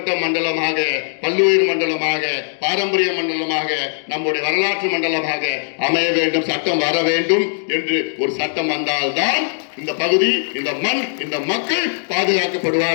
மண்டலமாக, பல்லுயிர் மண்டலமாக, பாரம்பரிய மண்டலமாக, நம்முடைய வரலாற்று மண்டலமாக அமைய வேண்டும், சட்டம் வர வேண்டும் என்று ஒரு சட்டம் வந்தால்தான் இந்த பகுதி, இந்த மண், இந்த மக்கள்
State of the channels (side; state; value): right; silent; digital silence